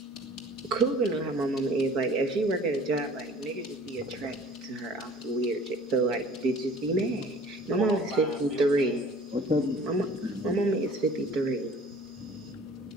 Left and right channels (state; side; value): normal; both; correlation 0.49